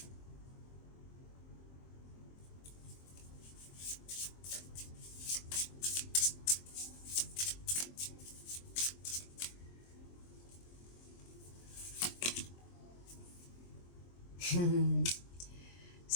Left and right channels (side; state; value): right; late; 23 ms